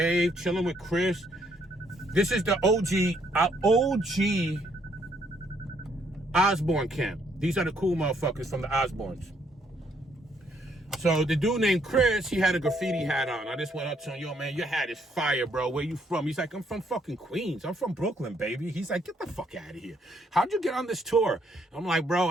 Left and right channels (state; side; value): normal; both; correlation 0.70